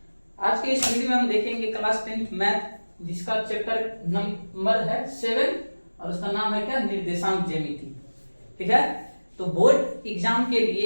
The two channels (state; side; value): inverted; both; correlation -1.00